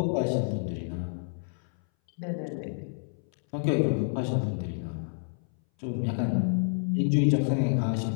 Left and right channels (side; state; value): right; silent; 59 dB below the other